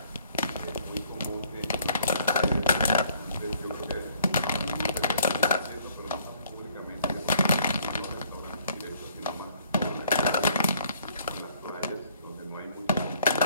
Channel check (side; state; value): both; inverted; correlation -0.61